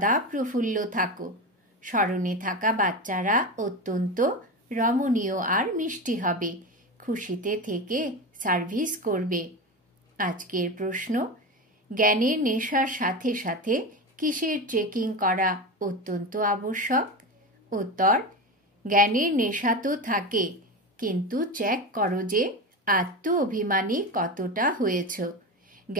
প্রফুল্ল থাকো। স্মরণে থাকা বাচ্চারা অত্যন্ত রমণীয় আর মিষ্টি হবে, খুশিতে থেকে সার্ভিস করবে। আজকের প্রশ্ন, জ্ঞানের নেশার সাথে সাথে কিসের চেকিং করা অত্যন্ত আবশ্যক? উত্তর, জ্ঞানের নেশা তো থাকে, কিন্তু চেক করো যে আত্ম অভিমানী কতটা হয়েছ।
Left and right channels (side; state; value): both; normal; correlation 0.21